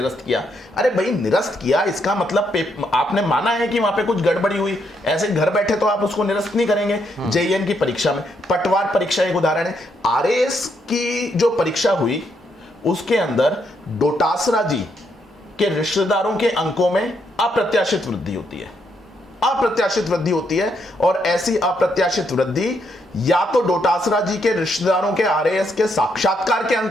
किया। अरे भाई, निरस्त किया इसका मतलब आपने माना है कि वहां पे कुछ गड़बड़ी हुई, ऐसे घर बैठे तो आप उसको निरस्त नहीं करेंगे। जेईएन की परीक्षा में पटवार परीक्षा एक उदाहरण है। आरएएस की जो परीक्षा हुई उसके अंदर डोटासरा जी के रिश्तेदारों के अंकों में अप्रत्याशित वृद्धि होती है। अप्रत्याशित वृद्धि होती है, और ऐसी अप्रत्याशित वृद्धि या तो डोटासरा जी के रिश्तेदारों के आरएएस के साक्षात्कार के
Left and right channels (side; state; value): both; normal; correlation 0.76